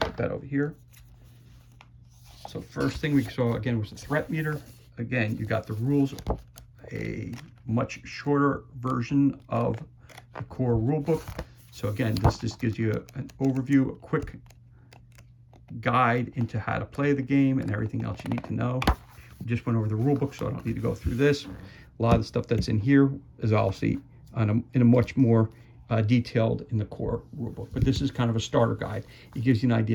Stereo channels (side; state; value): both; identical; correlation 1.00